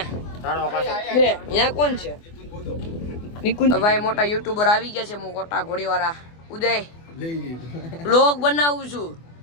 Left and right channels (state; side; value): late; right; 24 ms